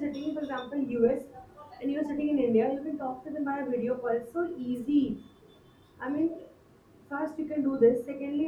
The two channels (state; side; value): identical; both; correlation 1.00